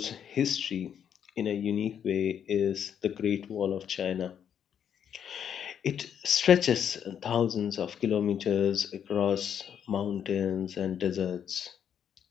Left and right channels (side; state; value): right; quieter; 8.6 dB